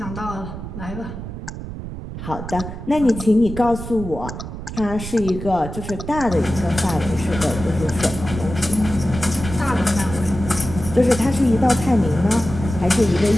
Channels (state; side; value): noise; right; rumble, 9 dB below the sound